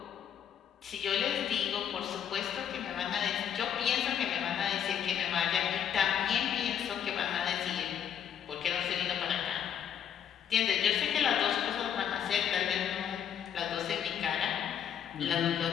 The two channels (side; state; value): right; quieter; 8.9 dB